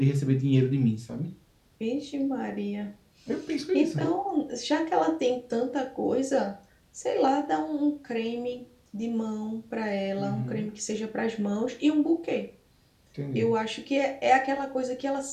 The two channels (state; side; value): identical; both; correlation 1.00